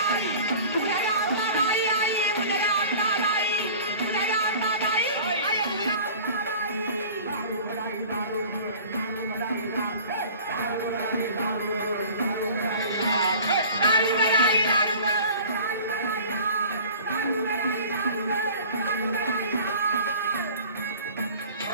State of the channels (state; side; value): inverted; both; correlation -0.43